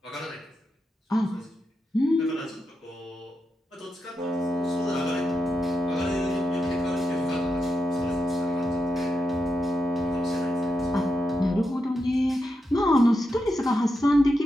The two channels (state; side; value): normal; both; correlation 0.86